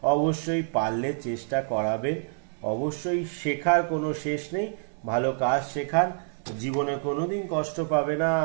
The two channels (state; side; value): silent; left; 60 dB below the other